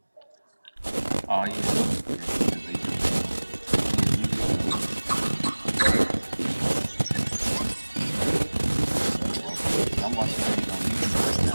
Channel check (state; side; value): inverted; both; correlation -1.00